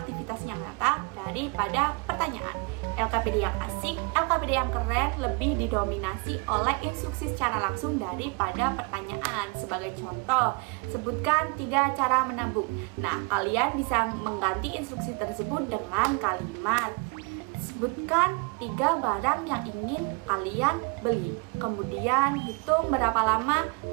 yang nyata daripada pertanyaan. LKPD yang asik, LKPD yang keren lebih didominasi oleh instruksi secara langsung daripada pertanyaan. Sebagai contoh, sebutkan 3 cara menabung. Nah, kalian bisa mengganti instruksi tersebut dengan kalimat: sebutkan 3 barang yang ingin kalian beli. Kemudian hitung berapa lama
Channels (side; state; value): left; quieter; 30.7 dB